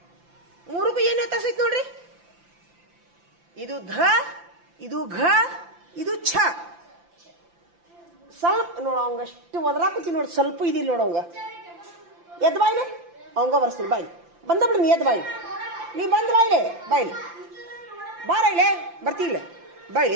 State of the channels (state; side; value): late; left; 5.8 ms